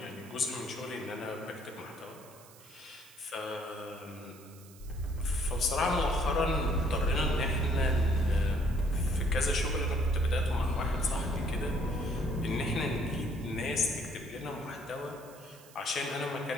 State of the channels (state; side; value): noise; right; hiss, 22 dB below the sound